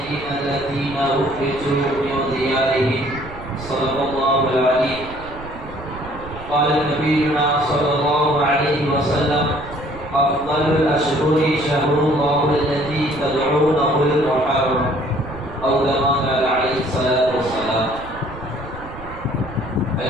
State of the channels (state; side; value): noise; right; rumble, 15 dB below the sound